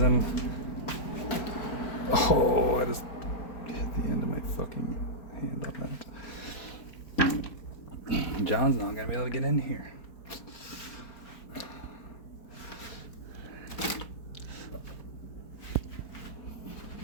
I just hit the end of my fucking hand on that. John's not gonna be able to get in here.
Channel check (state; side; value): late; right; 4.3 ms